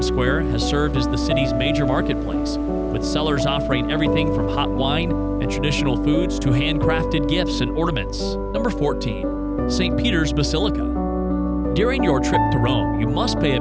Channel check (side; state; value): both; identical; correlation 1.00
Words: Square has served as the city's major marketplace, with sellers offering everything from hot wine and traditional foods to handcrafted gifts and ornaments. Number 14. St. Peter's Basilica. During your trip to Rome, you must pay